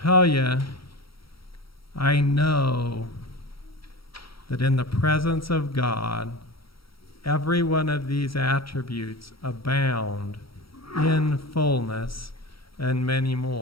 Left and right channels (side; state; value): right; late; 0.75 ms